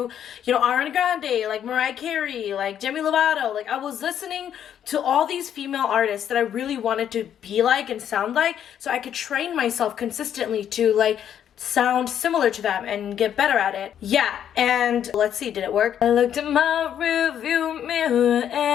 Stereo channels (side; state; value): right; quieter; 9.6 dB